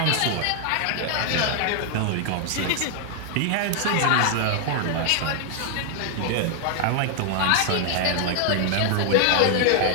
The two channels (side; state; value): both; different; correlation 0.00